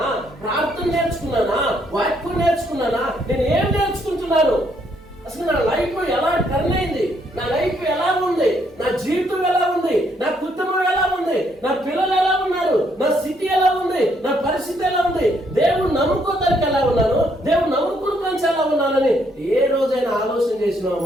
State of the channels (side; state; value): both; normal; correlation 0.71